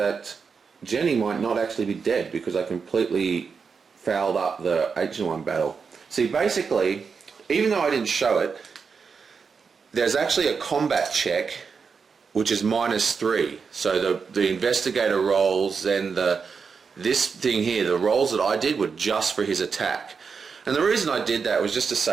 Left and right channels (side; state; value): left; quieter; 5.6 dB